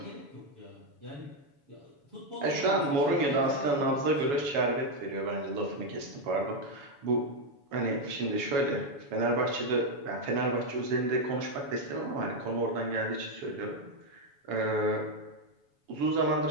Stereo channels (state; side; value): late; left; 7.1 ms